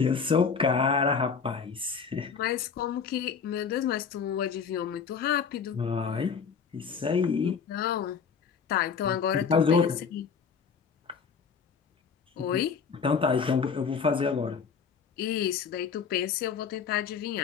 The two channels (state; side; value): quieter; right; 6.2 dB